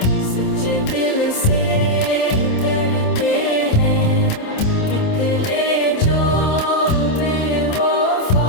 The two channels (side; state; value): right; late; 27 ms